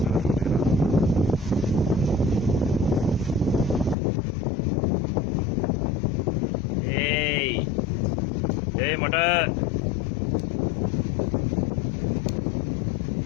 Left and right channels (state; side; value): drops out; right; at 4.0 s